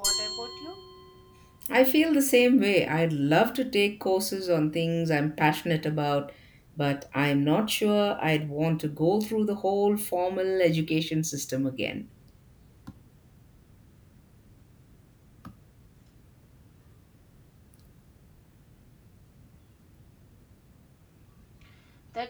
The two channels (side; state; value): both; identical; correlation 1.00